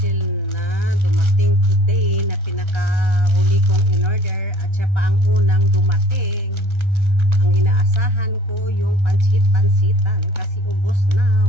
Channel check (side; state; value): left; late; 1.3 ms